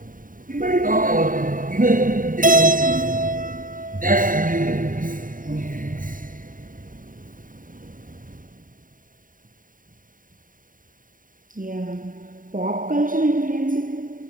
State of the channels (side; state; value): left; late; 0.39 ms